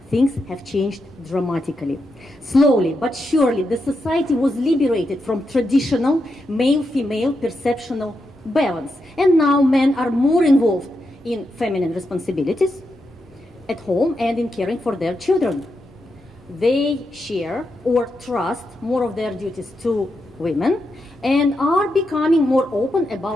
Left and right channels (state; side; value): normal; both; correlation 0.85